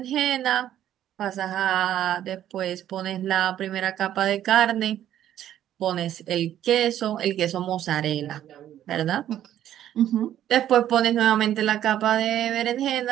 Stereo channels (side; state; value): left; quieter; 11.5 dB